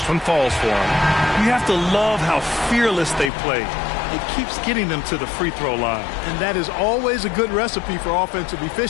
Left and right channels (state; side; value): drops out; right; at 3.3 s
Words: one falls for him. You have to love how fearless they play. It keeps getting them to the free throw line. And that is always a good recipe for offensive